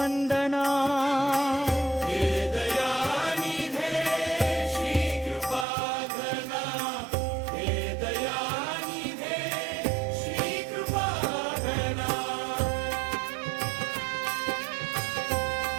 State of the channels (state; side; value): drops out; left; at 5.7 s